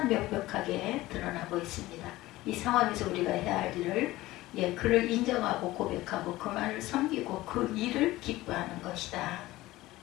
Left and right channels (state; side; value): quieter; right; 17.7 dB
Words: 명백하게 드러나고 있습니다. 이 상황에서 우리가 해야 할 일을 그를 인정하고 고백하고 그만을 섬기고 그 일을 기뻐하는 것이다.